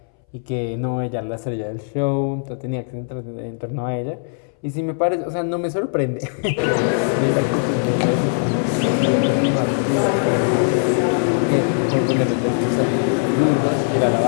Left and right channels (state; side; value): silent; right; 62 dB below the other